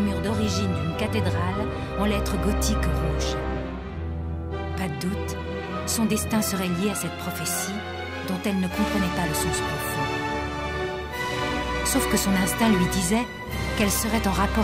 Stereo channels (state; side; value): identical; both; correlation 1.00